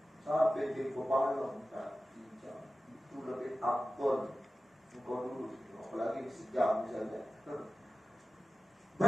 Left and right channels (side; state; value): both; normal; correlation 0.95